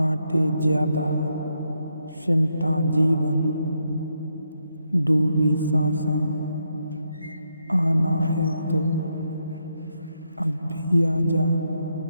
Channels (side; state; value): both; inverted; correlation -0.80